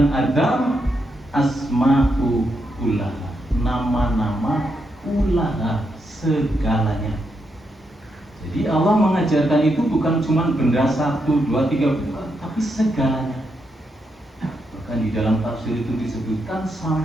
Adam asma'u kullaha, nama-nama kullaha, segalanya. Jadi Allah mengajarkan itu bukan cuma benda 1, 2, 3, bukan, tapi segalanya. Maka Dan di dalam tafsir itu disebutkan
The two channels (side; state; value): both; normal; correlation 0.82